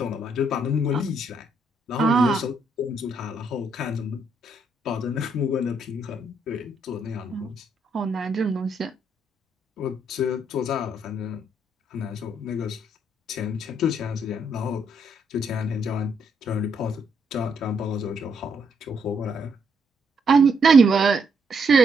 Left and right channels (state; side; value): normal; both; correlation 0.74